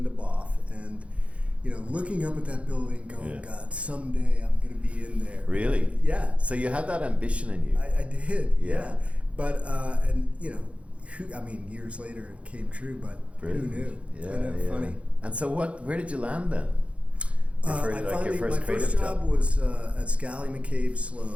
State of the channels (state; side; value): late; left; 0.062 ms